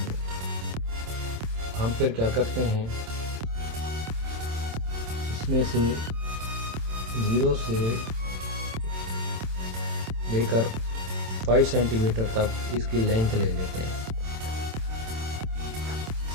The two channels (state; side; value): late; left; 27 ms